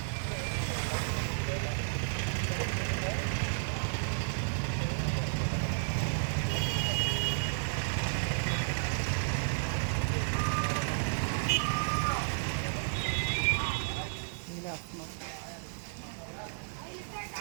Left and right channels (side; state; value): left; silent; digital silence